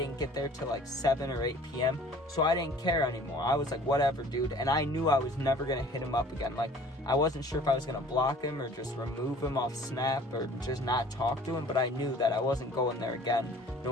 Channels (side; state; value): both; normal; correlation 0.50